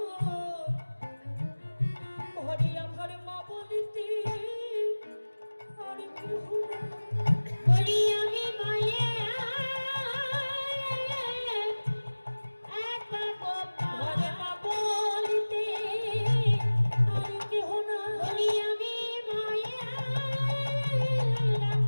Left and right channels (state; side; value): inverted; both; correlation -1.00